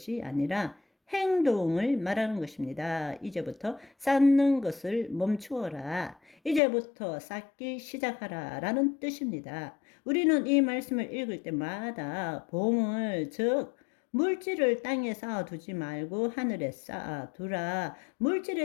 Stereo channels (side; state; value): right; drops out; at 6.6 s